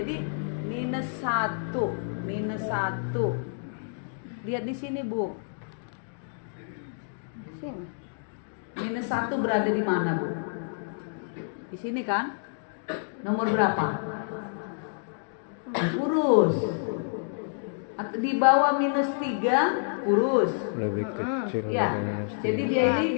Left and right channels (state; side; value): silent; right; digital silence